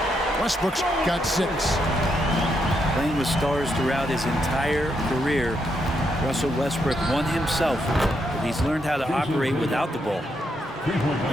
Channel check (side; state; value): both; normal; correlation 0.79